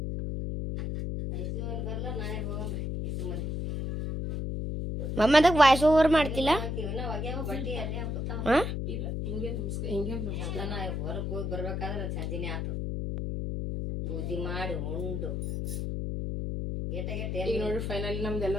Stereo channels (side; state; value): left; noise; hum, 2 dB below the sound